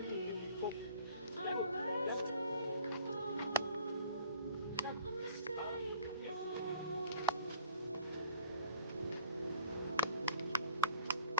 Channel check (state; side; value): inverted; both; correlation -0.52